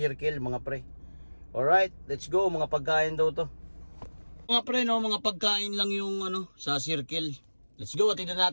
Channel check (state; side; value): inverted; both; correlation -1.00